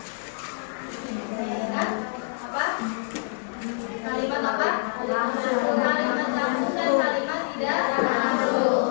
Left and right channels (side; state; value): right; silent; 61 dB below the other